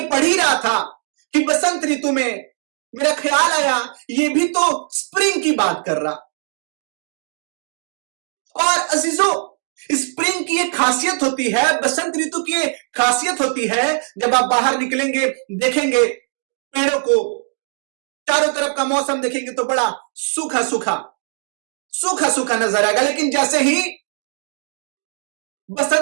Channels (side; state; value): left; silent; digital silence